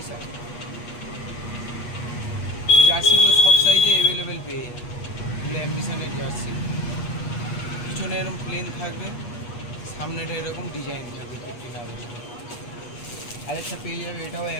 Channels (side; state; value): right; late; 8.3 ms